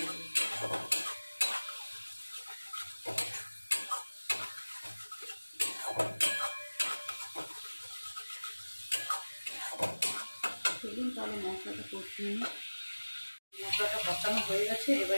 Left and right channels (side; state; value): both; inverted; correlation -1.00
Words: চলুন তাহলে মশলাটা কষিয়ে নিই। মশলাটা কষানো হয়ে গেছে, এবার